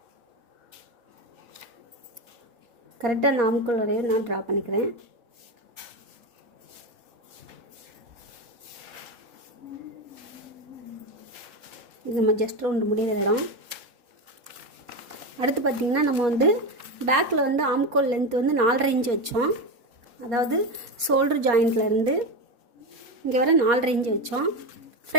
கரெக்டாக அந்த ஆம்கோல் வரையும் நான் ட்ரா பண்ணிக்கிறேன். இது நம்ம ஜஸ்ட் ரவுண்டு முடிகிற இடம். அடுத்து பார்த்திங்கன்னா நம்ம வந்து பேக்கில் வந்து ஆம்கோல் லென்த் வந்து 4.5 இன்ச் வச்சோம். அதாவது ஷோல்டர் ஜாயிண்ட்லேருந்து இங்கே வர 4.5 இன்ச் வச்சோம்.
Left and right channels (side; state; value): left; late; 4.2 ms